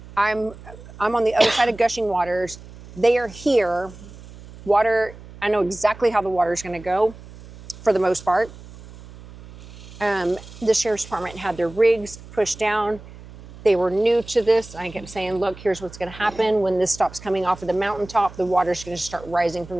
I'm on the other side of Gushing Waters. They are here. Water, I know exactly how the water is going to go for the most part. The sheriff's department had their rigs pushed down. They were new to this. I kept saying, look, here's what's going to happen. When this stops coming off of the mountaintop, the water's going to start rising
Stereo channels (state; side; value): noise; right; hum, 18 dB below the sound